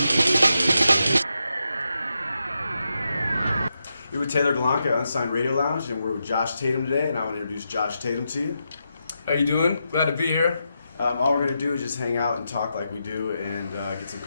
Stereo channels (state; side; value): inverted; both; correlation -0.85